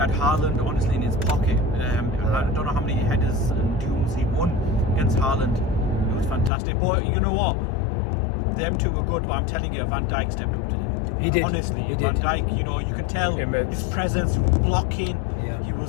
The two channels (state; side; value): drops out; right; at 6.5 s